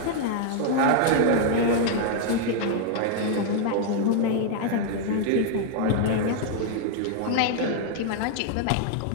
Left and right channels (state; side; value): different; both; correlation 0.00